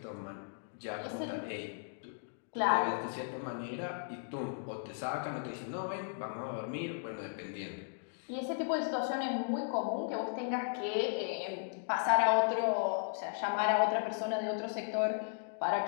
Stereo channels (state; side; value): silent; right; digital silence